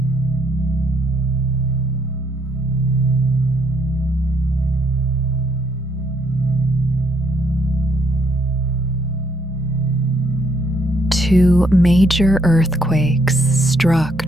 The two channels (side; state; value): both; normal; correlation 0.70